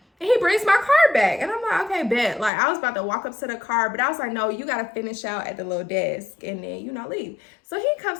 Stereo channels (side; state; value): right; drops out; at 2.5 s